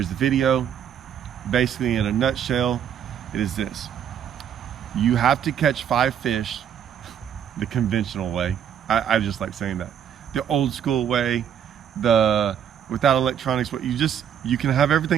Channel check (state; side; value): quieter; left; 8.9 dB